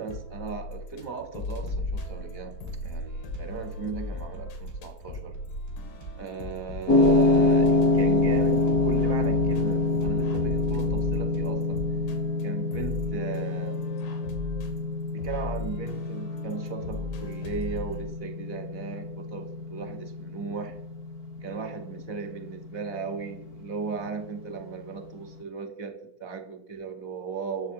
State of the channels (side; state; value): right; late; 4.1 ms